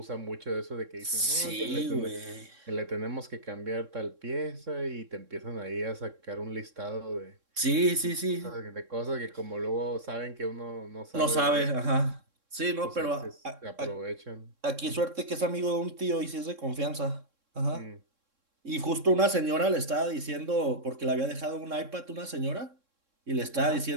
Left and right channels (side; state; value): left; late; 3.6 ms